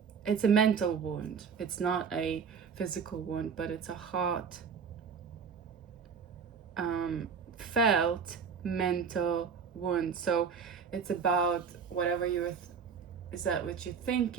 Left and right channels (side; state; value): left; quieter; 6.3 dB